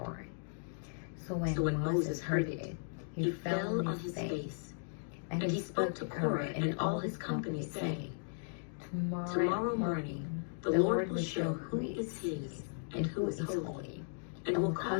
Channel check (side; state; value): right; silent; digital silence